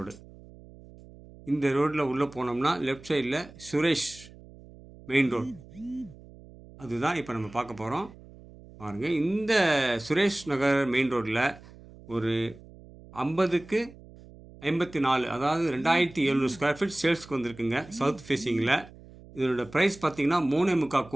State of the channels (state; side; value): noise; right; hum, 20 dB below the sound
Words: இந்த ரோட்டில் உள்ளே போனோம்னா லெஃப்ட் சைடில் சுரேஷ் மெயின் ரோடு. அதுதான் இப்போ நம்ம பார்க்க போகிறோம். பாருங்க, இந்த சுரேஷ் நகர் மெயின் ரோட்டில் ஒரு 50க்கு 54, அதாவது 2700 ஸ்கொயர் ஃபீட் சேல்ஸ்க்கு வந்திருக்குங்க. சவுத் ஃபேஸிங்கில் இதனோட ப்ரைஸ் பார்த்தீங்கன்னா 3.25